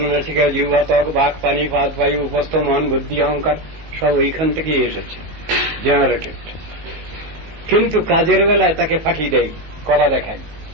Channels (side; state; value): left; late; 19 ms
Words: জিহ্বা, ত্বক, বাক, পানি, পাদ, বায়ু, উপস্থ, মন, বুদ্ধি, অহংকার সব ওইখান থেকেই এসেছে, জেনারেটেড। কিন্তু কাজের বেলায় তাকে ফাঁকি দেয়, কলা দেখায়।